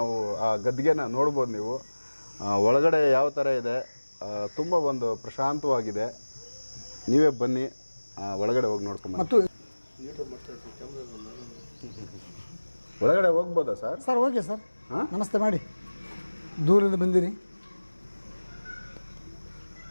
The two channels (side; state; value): both; inverted; correlation -1.00